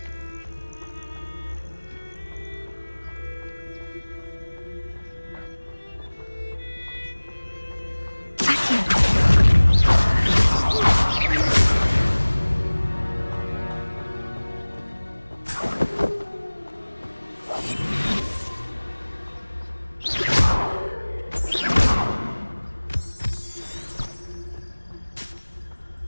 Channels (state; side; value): inverted; both; correlation -1.00